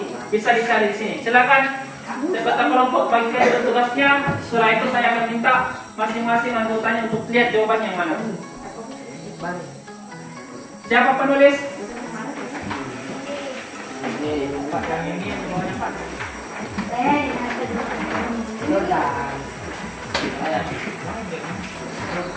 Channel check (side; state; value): both; identical; correlation 1.00